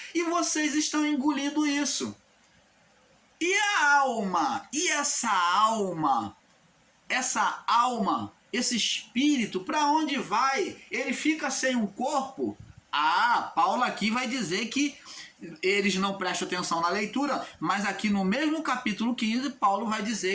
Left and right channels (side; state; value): both; identical; correlation 1.00